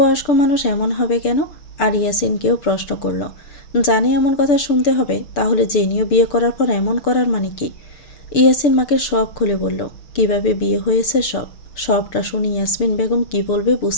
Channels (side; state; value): right; late; 6.8 ms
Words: মানুষ এমন হবে কেন? আর ইয়াসিনকেও প্রশ্ন করলো, জানি এমন কথা শুনতে হবে, তাহলে জেনিও বিয়ে করার পর এমন করার মানে কি? ইয়াসিন মাকে সব খুলে বলল, কিভাবে বিয়ে হয়েছে সবটা শুনে ইয়াসমিন বেগম কি বলবে